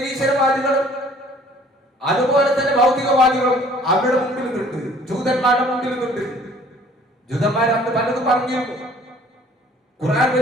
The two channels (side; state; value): both; normal; correlation 0.55